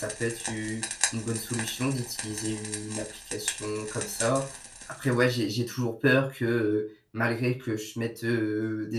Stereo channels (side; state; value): both; identical; correlation 1.00